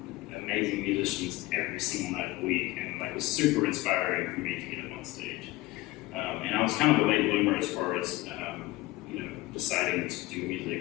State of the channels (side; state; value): right; quieter; 19.7 dB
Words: amazing musicians every single night of the week, and it was super inspiring for me to get up on stage. And I was kind of a late bloomer as far as deciding to do